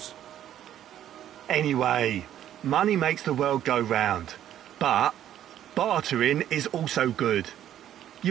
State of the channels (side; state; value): left; quieter; 11.2 dB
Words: Anyway, money makes the world go round. But bartering is also good.